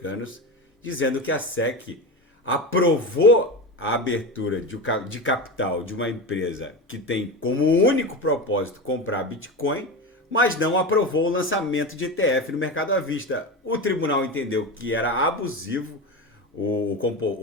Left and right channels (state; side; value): normal; both; correlation 0.23